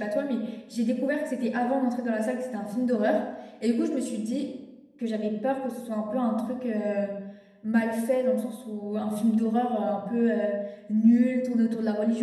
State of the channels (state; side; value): identical; both; correlation 1.00